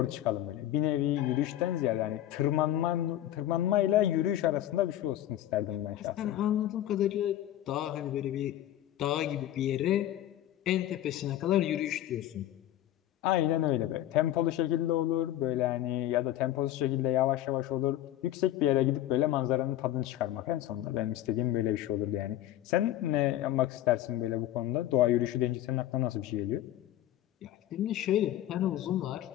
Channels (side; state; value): right; quieter; 13.0 dB